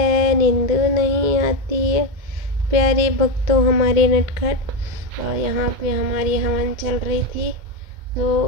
नींदो नहीं आती है। प्यारे भक्तों हमारे नटखट। और यहाँ पे हमारी हवन चल रही थी,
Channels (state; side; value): late; left; 2.1 ms